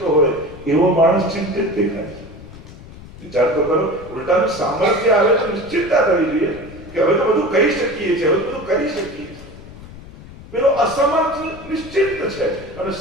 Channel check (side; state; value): left; noise; rumble, 17 dB below the sound